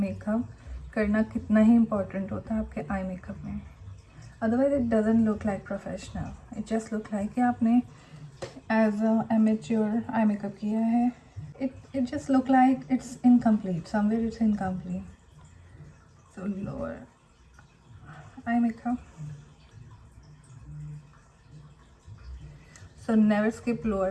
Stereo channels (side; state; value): both; identical; correlation 1.00